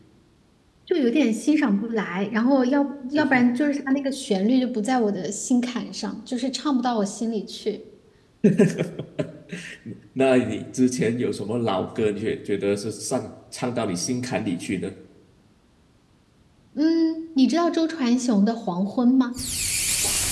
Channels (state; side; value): identical; both; correlation 1.00